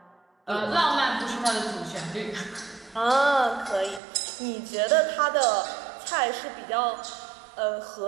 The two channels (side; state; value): left; drops out; at 4.0 s